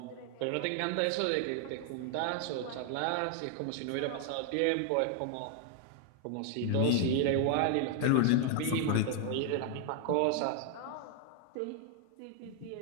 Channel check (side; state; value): both; different; correlation 0.00